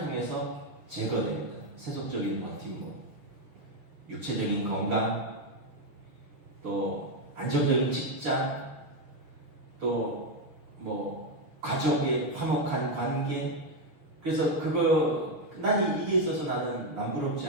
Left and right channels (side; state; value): left; late; 6.4 ms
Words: 제거됩니다. 세속적인 버팀목, 육체적인 건강, 또 안정적인 직장, 또 뭐 가족의 화목한 관계. 그래서 난 이게 있어서 나는 남부럽지